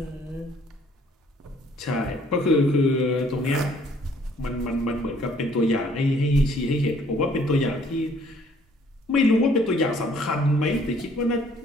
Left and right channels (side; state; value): both; normal; correlation 0.61